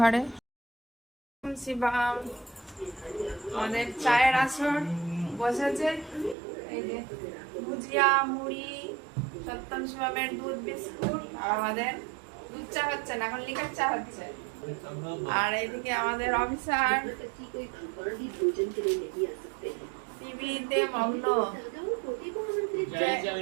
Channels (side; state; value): left; drops out; at 6.4 s